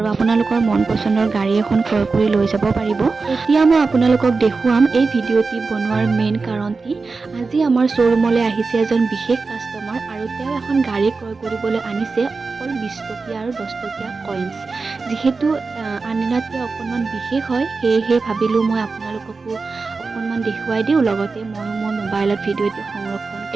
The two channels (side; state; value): left; quieter; 4.2 dB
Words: আপোনালোকৰ মন পছন্দৰ গাড়ী এখন ক্ৰয় কৰি লৈ যাব পাৰিব। এতিয়া মই আপোনালোকক দেখুৱাম এই ভিডিঅ'টি বনোৱাৰ মেইন কাৰণটি। আজি আমাৰ শ্বৰুমলৈ আহিছে এজন বিশেষ কাষ্টমাৰ আৰু তেওঁ এখন গাড়ী ক্ৰয় কৰিবলৈ আনিছে অকল 20 টকীয়া আৰু 10 টকীয়া কইনছ। যেহেতু আনদিনাতকৈ অকণমান বিশেষ হয় সেয়েহে ভাবিলোঁ মই আপোনালোককো অকণমান দেখুৱাই দিওঁ, লগতে ময়ো মোৰ মোবাইলত ভিডিঅ'টি সংৰক্ষণ